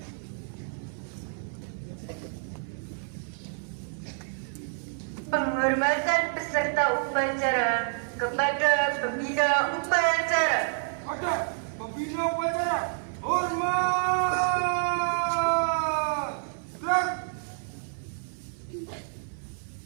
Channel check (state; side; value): silent; left; 55 dB below the other